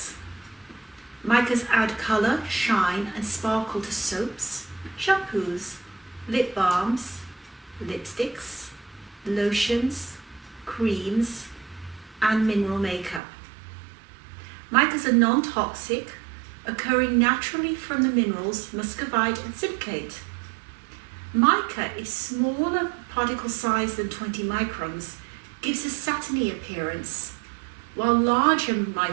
Micas add colour, shine and sparkle to soaps, shampoos, lip balms, lipsticks, lotions, creams and mineral makeup. Micas are non-toxic, occurring naturally from the minerals muscovite and silicate. Mica is smaller particle size than 20 microns, gives a satiny appearance, while larger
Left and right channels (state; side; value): drops out; left; at 13.2 s